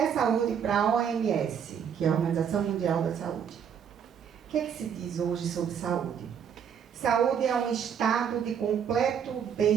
saúde para a OMS, que é a Organização Mundial da Saúde. O que é que se diz hoje sobre saúde? Saúde é um estado de completo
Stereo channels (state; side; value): quieter; left; 7.8 dB